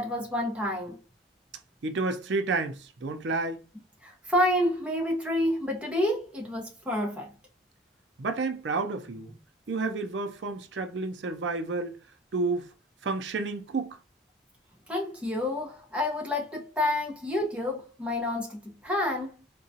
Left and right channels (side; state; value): both; normal; correlation 0.42